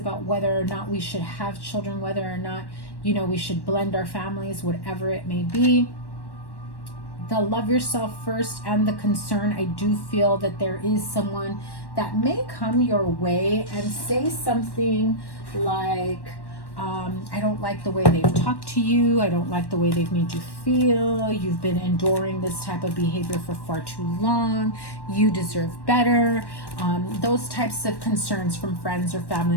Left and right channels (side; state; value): right; late; 1.1 ms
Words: whether or not we should have children, whether or not, we should blend our families, whatever it may be. The love yourself first and the concern, I do feel that there is someone that may come your way and say something like, I don't like the way they've talked to you. I don't like the way they've made you feel. You've been enduring this type of behavior for far too long. You deserve better. Those types of concerns from friends or